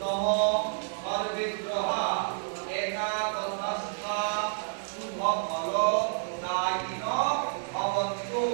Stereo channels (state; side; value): silent; left; digital silence